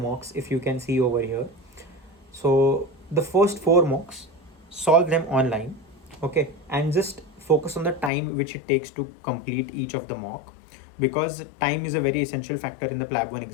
if you can see over here. So the first four mocks, solve them online, okay, and just focus on the time which it takes to complete each of the mock, because time is a very essential factor in the PLAB 1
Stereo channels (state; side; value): drops out; right; at 8.1 s